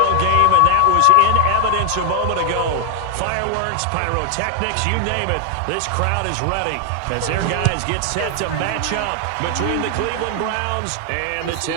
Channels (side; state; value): both; different; correlation 0.00